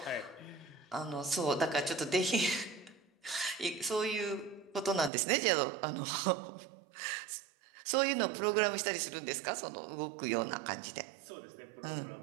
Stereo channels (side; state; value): left; drops out; at 5.1 s